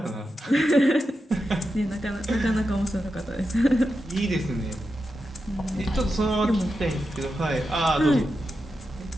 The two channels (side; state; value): both; normal; correlation 0.89